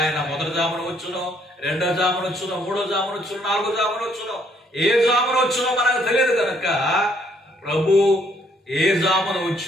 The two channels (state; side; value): normal; both; correlation 0.67